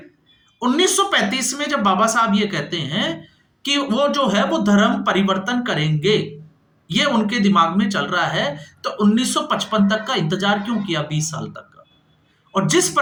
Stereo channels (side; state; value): both; identical; correlation 1.00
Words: 1935 में जब बाबा साहब ये कहते हैं कि वो जो है वो धर्म परिवर्तन करेंगे, ये उनके दिमाग में चल रहा है। तो 1955 तक का इंतजार क्यों किया, 20 साल तक का? और जिस